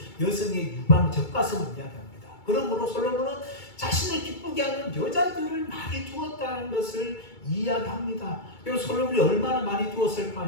여성의 유방, 젖가슴을 이야기합니다. 그러므로 솔로몬은 자신을 기쁘게 하는 여자들을 많이 두었다는 것을 이야기합니다. 그리고 솔로몬이 얼마나 많이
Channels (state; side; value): late; right; 2.3 ms